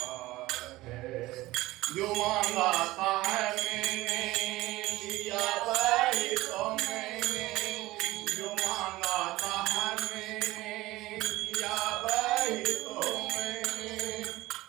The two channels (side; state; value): left; quieter; 18.3 dB